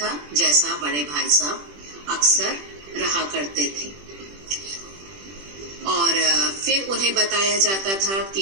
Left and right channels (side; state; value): left; late; 21 ms